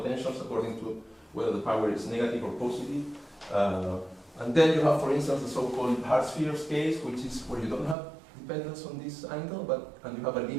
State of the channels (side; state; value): left; drops out; at 8.0 s